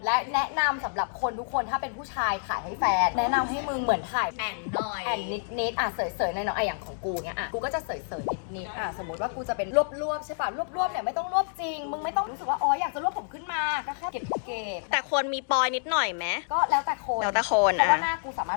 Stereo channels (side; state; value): right; silent; digital silence